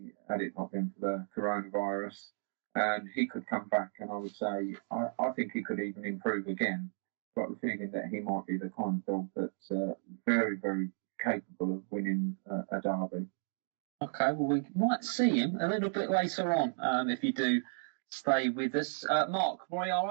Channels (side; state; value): left; silent; digital silence